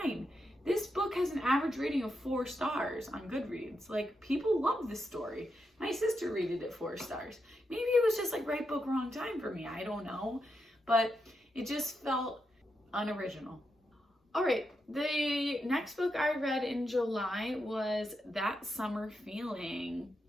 This book has an average rating of 4 stars on Goodreads. Like, people love this story. My sister rated it 4 stars. Maybe it was just like right book, wrong time for me. I don't know. But it just felt unoriginal. All right, the next book I read in July was That Summer Feeling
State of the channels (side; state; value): both; normal; correlation 0.85